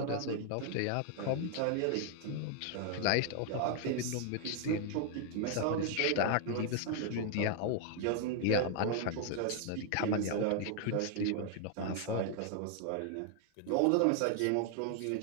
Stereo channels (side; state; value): both; different; correlation 0.00